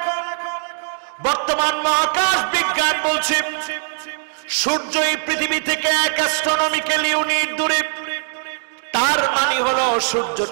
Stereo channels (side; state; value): left; silent; 66 dB below the other